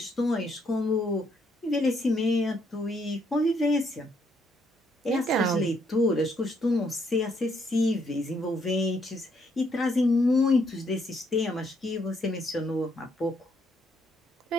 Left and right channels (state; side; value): normal; both; correlation 0.72